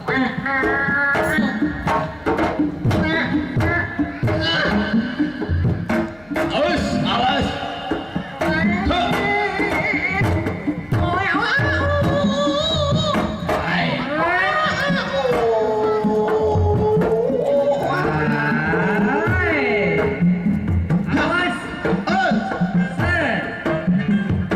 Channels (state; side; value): noise; left; hum, 28 dB below the sound